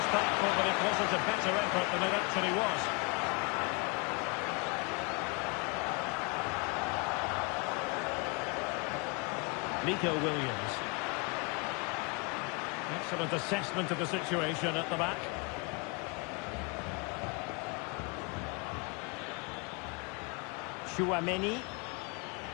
thankful that it wasn't a better effort than it actually was. Nico Williams. Excellent assessment of the situation at the back. Chouameni.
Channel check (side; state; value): right; quieter; 31.2 dB